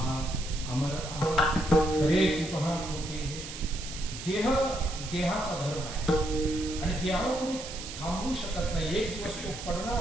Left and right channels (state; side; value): noise; right; hiss, 10 dB below the sound